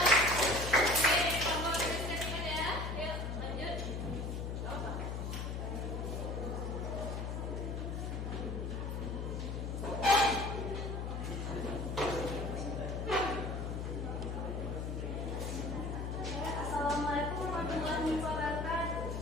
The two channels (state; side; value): noise; left; hum, 3 dB below the sound